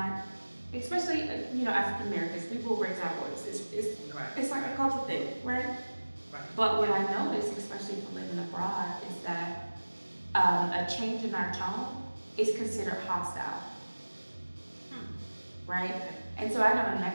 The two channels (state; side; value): inverted; both; correlation -1.00